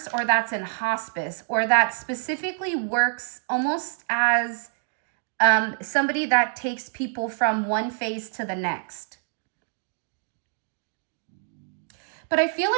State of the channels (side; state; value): left; silent; digital silence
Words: or that's in hospice or that specifically works almost as somebody that takes people from one phase to the next. But I feel